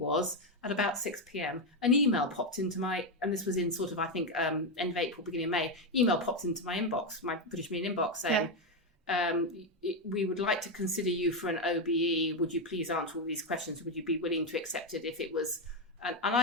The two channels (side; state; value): both; normal; correlation 0.07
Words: at about 6 p.m, an email popped into and this was in sort of, I think, end of April, beginning of May, email popped into my inbox, my British Marine inbox, saying, we would like to consider you for an OBE. Would you please answer all these questions? Would you be willing to accept it if it was...